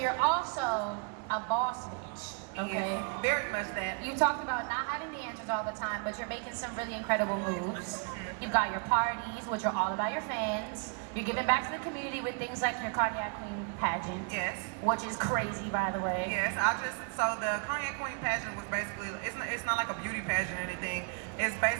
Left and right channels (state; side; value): quieter; left; 38.4 dB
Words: also a boss bitch, okay? Yes, very much that. You talked about not having the answers all the time, but you're making some really incredible moves. You've got your parties, which are all about your fans. You're giving back to the community with things like your Cognac Queen pageant. Yes. Which is crazy, by the way. Yes, so the Cognac Queen pageant was basically, it's not like a beauty pageant or anything. It's